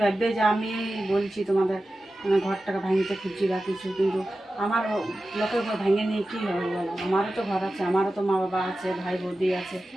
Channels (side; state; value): both; normal; correlation 0.94